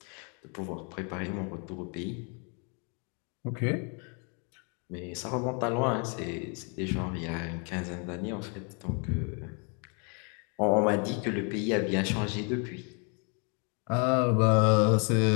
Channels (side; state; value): right; quieter; 36.9 dB